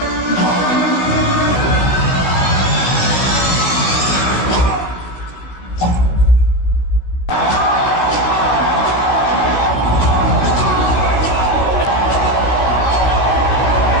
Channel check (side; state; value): right; late; 16 ms